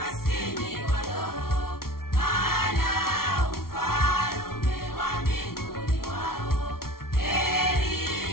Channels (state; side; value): late; right; 0.93 ms